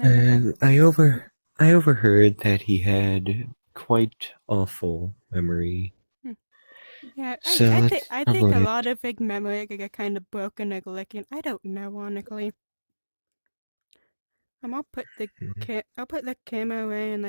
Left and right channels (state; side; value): inverted; both; correlation -1.00